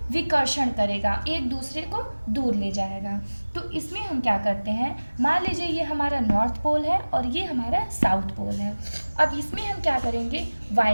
विकर्षण करेगा, एक दूसरे को दूर ले जाएगा। तो इसमें हम क्या करते हैं, मान लीजिए ये हमारा नॉर्थ पोल है और ये हमारा साउथ पोल है। अब इसमें हम क्या करेंगे,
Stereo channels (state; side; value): inverted; both; correlation -1.00